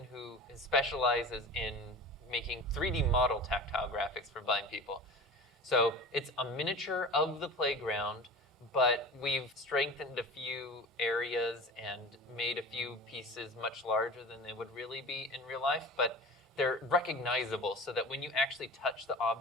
who specializes in making 3D model tactile graphics for blind people. So it's a miniature of the playground, but we've strengthened a few areas and made a few pieces much larger than they would really be in real life, but they're recognizable so that when you actually touch the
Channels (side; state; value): both; normal; correlation 0.34